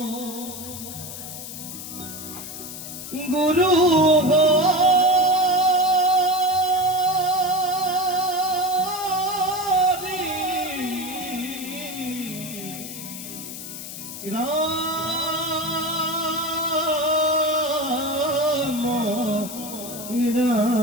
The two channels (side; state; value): left; noise; hiss, 10 dB below the sound